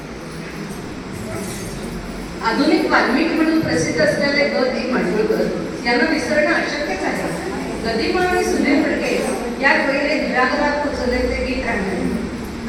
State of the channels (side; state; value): both; identical; correlation 1.00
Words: आधुनिक वाल्मिकी म्हणून प्रसिद्ध असलेले ग दी माडगूळकर यांना विसरणं अशक्यच आहे. गदिमा आणि सुनील फडके या पहिले घराघरात पोचवले ते गीत